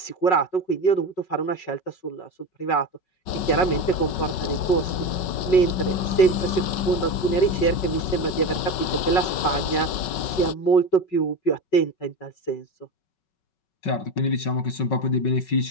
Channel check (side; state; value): right; late; 5.4 ms